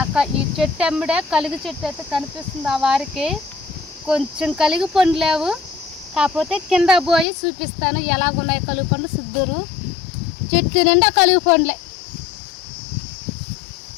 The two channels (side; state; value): right; drops out; at 7.2 s